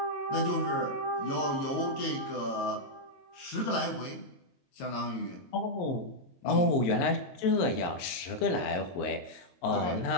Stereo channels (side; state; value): right; late; 22 ms